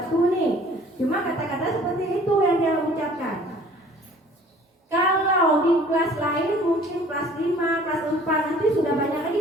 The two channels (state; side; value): normal; both; correlation 0.51